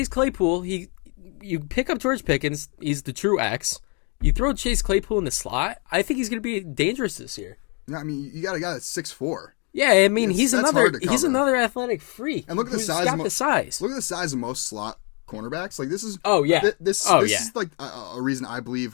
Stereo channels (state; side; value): quieter; right; 35.4 dB